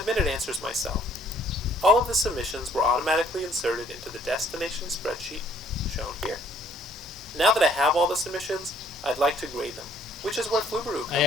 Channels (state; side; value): normal; both; correlation 0.62